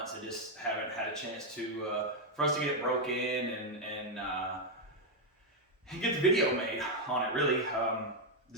I just haven't had a chance to, for us to get it broke in and get the video made on it, really.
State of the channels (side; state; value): both; normal; correlation 0.01